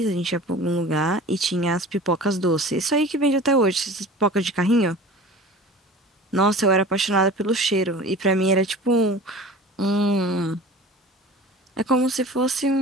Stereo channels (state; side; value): normal; both; correlation 0.39